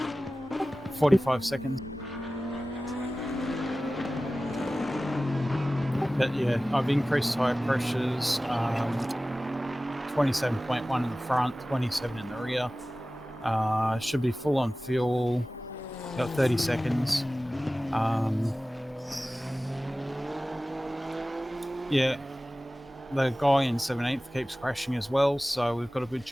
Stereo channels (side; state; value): both; normal; correlation 0.96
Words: 45 seconds. But yeah, I've increased tyre pressures, 27.1 in the front, 27 in the rear. Should be full on fuel, got 30 seconds. Yeah, the guy in 17th keeps crashing as well, so we've got a good